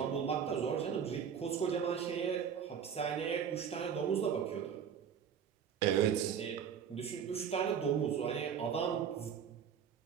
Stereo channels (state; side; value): quieter; left; 7.8 dB